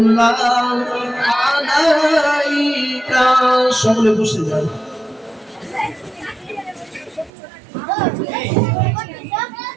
আলাইকা। সকলে বসে যান।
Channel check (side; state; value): left; drops out; at 7.3 s